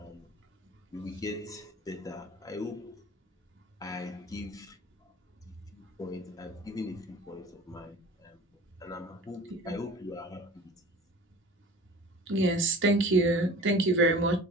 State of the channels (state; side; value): normal; both; correlation 0.41